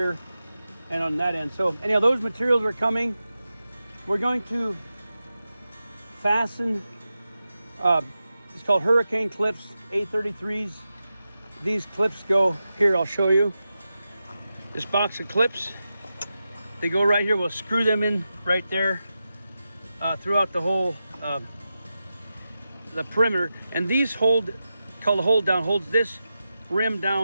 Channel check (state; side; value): inverted; both; correlation -0.91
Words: and on that end. So anyhow, those materials are coming. We're going to fasten, it's called hurricane clips, A33s. These clips go here, I'll show you. This box of clips, they go right here. We'll screw them in right there throughout the whole, the perimeter. And these called the hold down, holds this rim